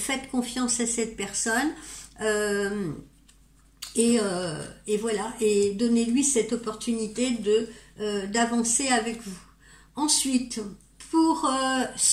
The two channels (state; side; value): identical; both; correlation 1.00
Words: confiance à cette personne et voilà, et donnez-lui cette opportunité d'avancer avec vous. Ensuite, pour